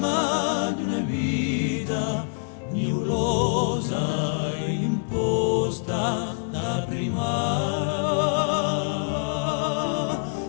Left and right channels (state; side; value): silent; right; 56 dB below the other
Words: d'una vita nebulosa imposta da prima.